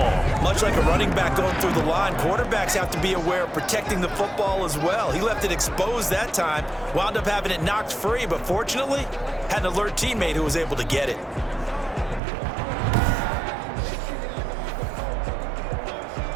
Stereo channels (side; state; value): left; drops out; at 12.2 s